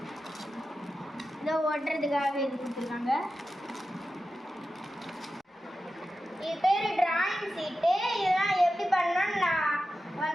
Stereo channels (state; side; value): normal; both; correlation 0.92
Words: இதை ஓட்டுறதுக்காக இது கொடுத்துருக்காங்க. இது பேர் டிராயிங் சீட்டு. இதெல்லாம் எப்படி பண்ணணும்னு நான்